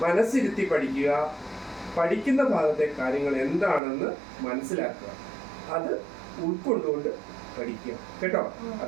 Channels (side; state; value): left; drops out; at 3.8 s